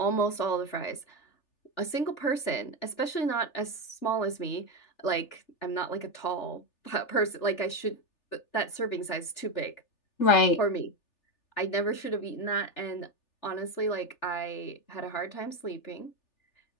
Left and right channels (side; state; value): right; late; 3.4 ms